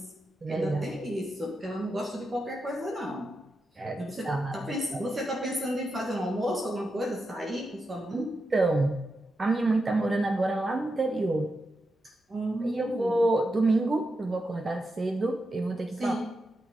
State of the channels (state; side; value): normal; both; correlation 0.87